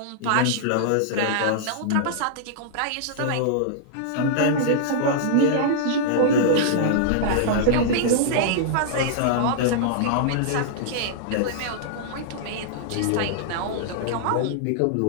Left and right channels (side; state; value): both; different; correlation -0.02